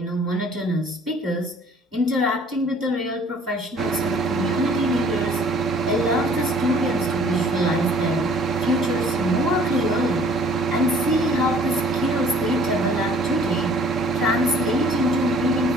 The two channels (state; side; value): normal; both; correlation 0.54